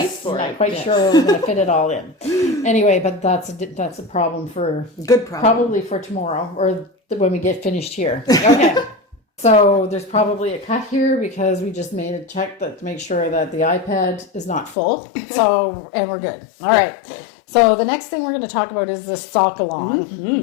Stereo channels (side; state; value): right; drops out; at 14.8 s